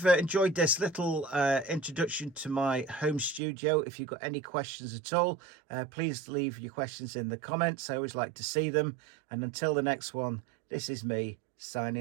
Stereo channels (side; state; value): left; drops out; at 3.4 s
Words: enjoyed this little introduction to my home studio. If you've got any questions at all, please leave your questions in the comments. I always like to see them. And until the next one, this is me